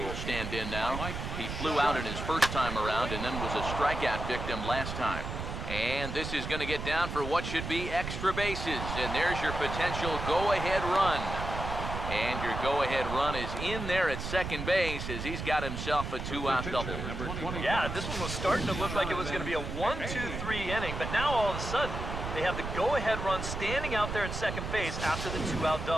stand in now. He flew out in his first time around and then was a strikeout victim last time. And this is going to get down for what should be extra bases. And there's your potential go-ahead run. And your go-ahead run is in there at second base as he's got himself a 2-out double. Yeah, this one was starting to look like it was going to be a 1-2-3 inning, but now all of a sudden they have the go-ahead run standing out there at second base after the 2-out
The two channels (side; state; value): right; noise; rumble, 5 dB below the sound